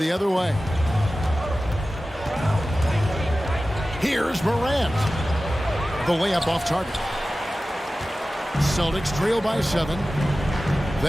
other way. Here's Morant. The layup off target. Celtics trail by 7.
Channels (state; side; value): normal; both; correlation 0.95